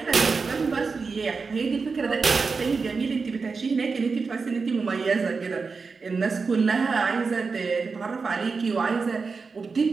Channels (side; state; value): left; quieter; 4.7 dB